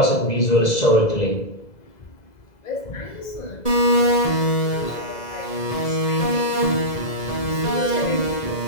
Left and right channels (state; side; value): late; right; 2.0 ms